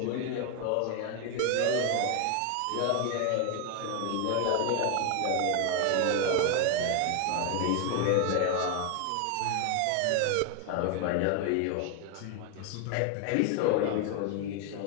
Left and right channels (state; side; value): different; both; correlation 0.01